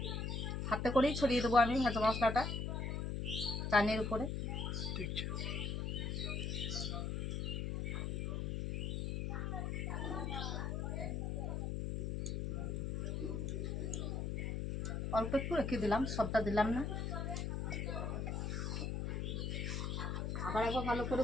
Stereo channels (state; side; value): noise; left; hum, 1 dB below the sound